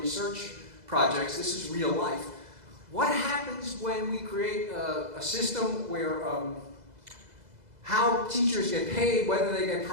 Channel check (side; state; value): left; late; 2.0 ms